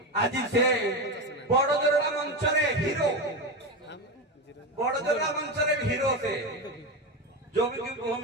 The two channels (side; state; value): both; normal; correlation 0.17